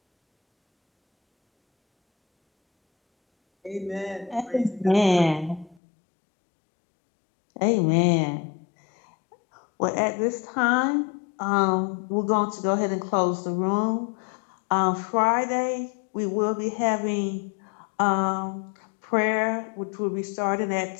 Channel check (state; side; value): drops out; right; at 5.8 s